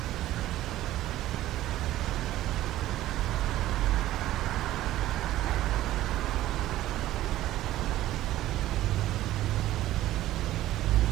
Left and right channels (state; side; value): quieter; left; 14.7 dB